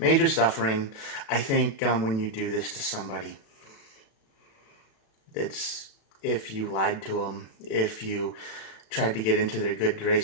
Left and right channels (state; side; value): late; right; 36 ms